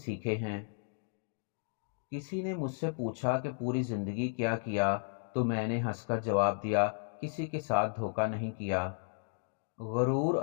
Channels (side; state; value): right; silent; digital silence